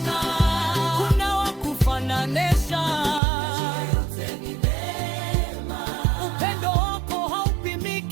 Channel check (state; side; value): drops out; left; at 3.2 s